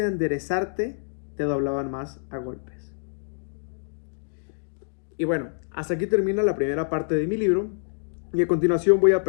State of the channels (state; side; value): silent; right; digital silence